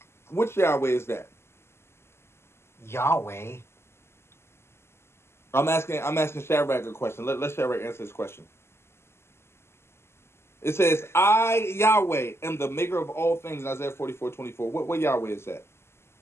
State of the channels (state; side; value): late; right; 0.12 ms